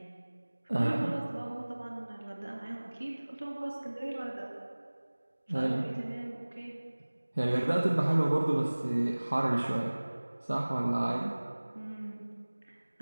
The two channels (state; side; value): inverted; both; correlation -1.00